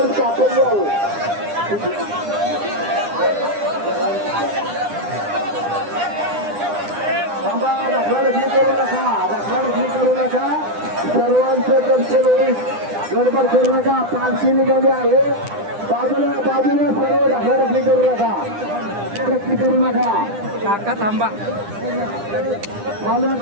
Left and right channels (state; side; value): late; left; 9.9 ms